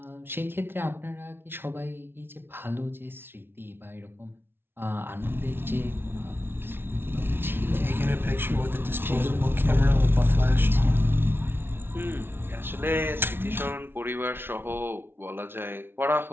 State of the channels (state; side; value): late; left; 0.11 ms